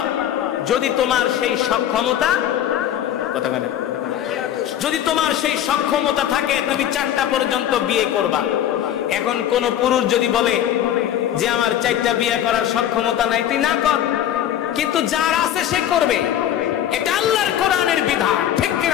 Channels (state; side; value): quieter; right; 11.0 dB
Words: যদি তোমার সেই সক্ষমতা, কথা বলেন, যদি তোমার সেই সক্ষমতা থাকে তুমি 4টা পর্যন্ত বিয়ে করবা। এখন কোন পুরুষ যদি বলে যে আমার 4টা বিয়ে করার সক্ষমতা নাই, তুই না কর, কিন্তু যার আছে সে করবে। এটা আল্লাহর কোরআনের বিধান, ঠিক